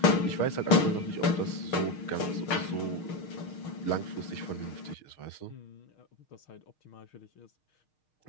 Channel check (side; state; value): right; late; 6.5 ms